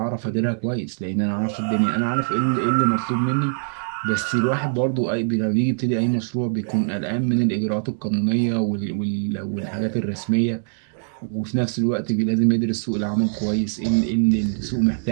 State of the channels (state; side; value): silent; left; digital silence